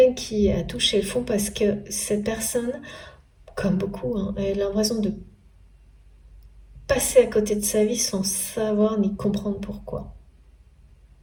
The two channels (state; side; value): identical; both; correlation 1.00